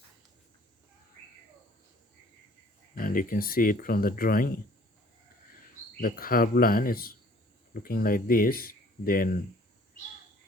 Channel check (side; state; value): both; normal; correlation 0.55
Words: and you can see it from the drawing. The curved line is looking like this. Then